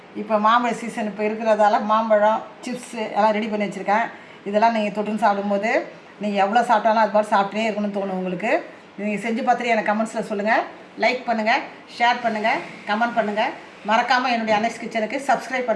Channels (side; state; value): both; identical; correlation 1.00